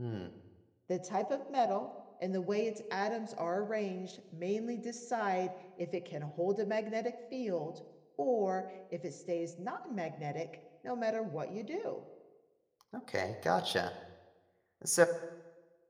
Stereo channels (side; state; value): both; identical; correlation 1.00